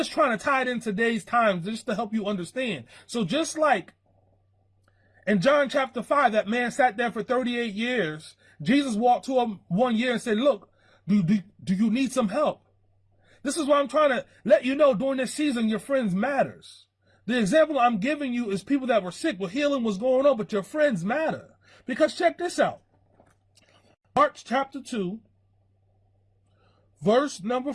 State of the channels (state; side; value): identical; both; correlation 1.00